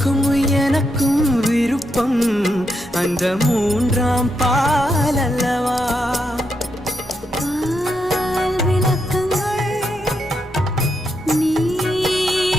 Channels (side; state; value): both; normal; correlation 0.82